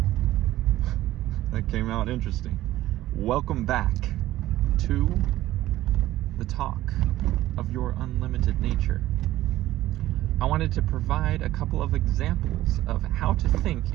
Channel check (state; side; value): quieter; left; 15.1 dB